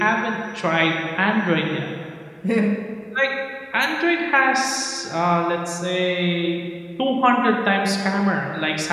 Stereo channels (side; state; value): both; identical; correlation 1.00